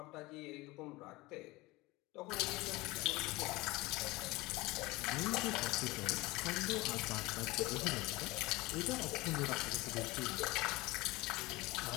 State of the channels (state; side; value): quieter; right; 21.3 dB